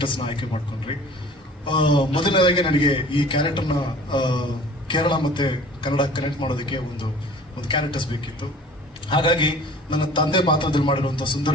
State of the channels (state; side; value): normal; both; correlation 0.46